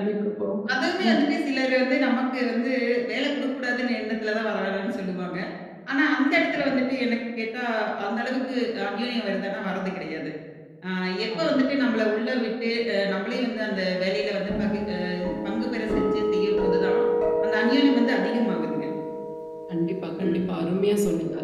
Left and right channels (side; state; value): both; identical; correlation 1.00